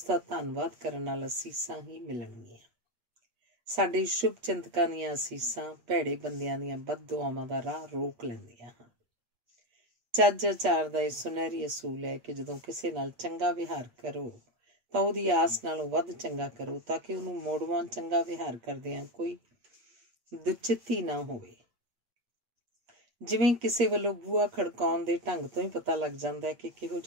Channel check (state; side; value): late; left; 8.6 ms